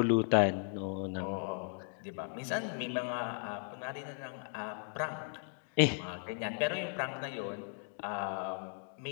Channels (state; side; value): silent; right; 54 dB below the other